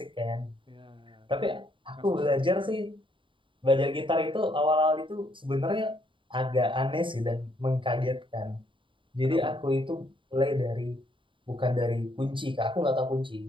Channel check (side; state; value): left; late; 0.24 ms